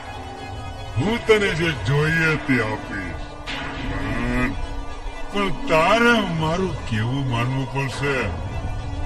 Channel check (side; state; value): both; identical; correlation 1.00